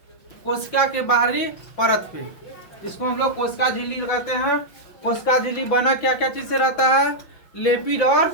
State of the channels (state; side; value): late; right; 5.9 ms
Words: कोशिका के बाहरी परत पे। इसको हम लोग कोशिका झिल्ली कहते हैं। कोशिका झिल्ली बना क्या क्या चीज से रहता है? लिपिड और